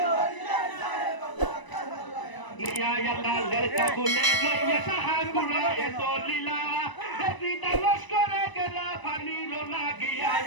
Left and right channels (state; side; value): late; right; 1.0 ms